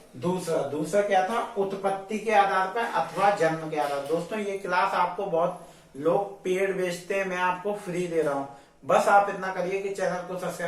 दूसरा क्या था, उत्पत्ति के आधार पर अथवा जन्म के आधार। दोस्तों ये क्लास आपको बहुत लोग पेड बेचते हैं, मैं आपको फ्री दे रहा हूं। बस आप इतना करिए कि चैनल को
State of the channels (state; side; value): identical; both; correlation 1.00